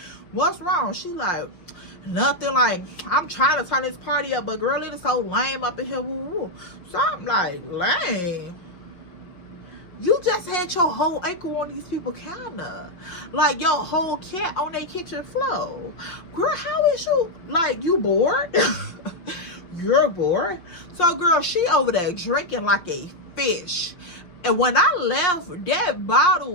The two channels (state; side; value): late; right; 5.6 ms